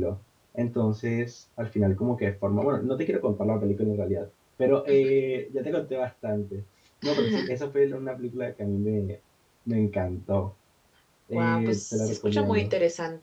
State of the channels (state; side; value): identical; both; correlation 1.00